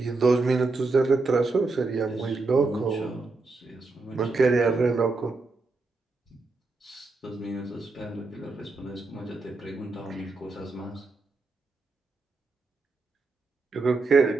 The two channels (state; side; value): quieter; left; 3.6 dB